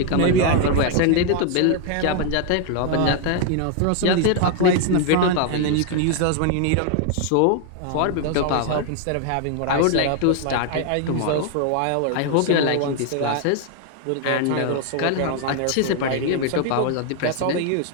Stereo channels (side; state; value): both; different; correlation 0.00